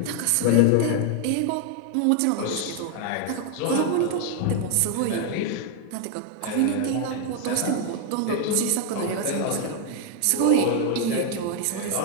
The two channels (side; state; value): both; different; correlation 0.00